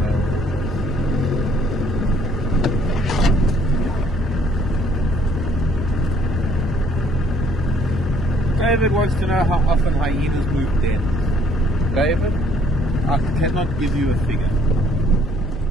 David wants to know how often hyenas move dens. David, I cannot give you a figure.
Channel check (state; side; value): normal; both; correlation 0.63